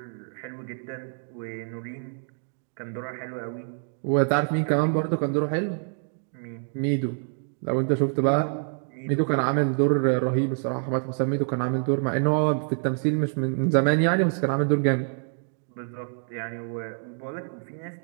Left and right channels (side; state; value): left; silent; 60 dB below the other